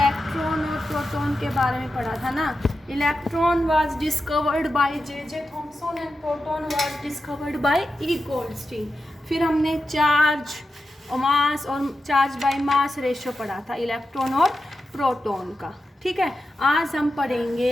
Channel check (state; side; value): normal; both; correlation 0.90